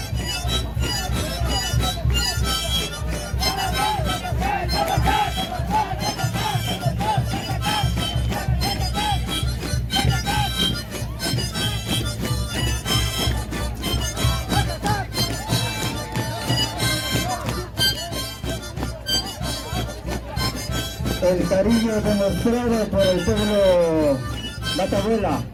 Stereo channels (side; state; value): both; identical; correlation 1.00